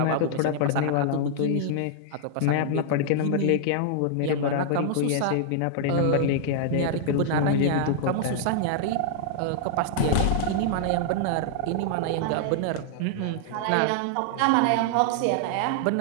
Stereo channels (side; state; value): both; different; correlation -0.01